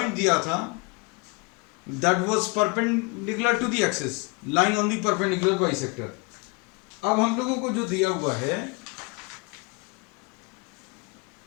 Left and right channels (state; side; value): quieter; right; 28.0 dB